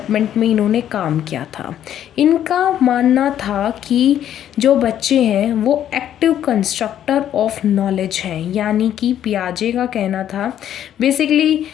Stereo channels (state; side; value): quieter; right; 10.7 dB